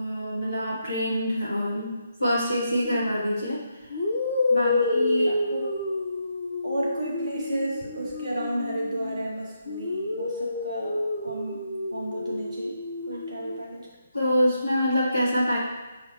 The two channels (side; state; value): both; inverted; correlation -0.81